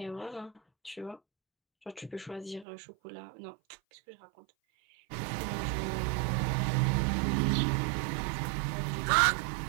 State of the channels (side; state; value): left; drops out; at 2.7 s